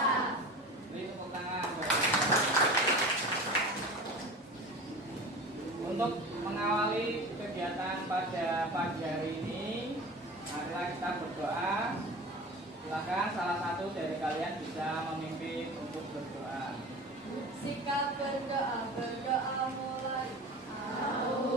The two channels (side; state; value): both; normal; correlation 0.35